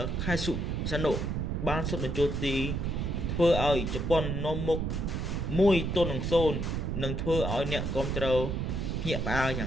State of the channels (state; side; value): noise; right; rumble, 1 dB below the sound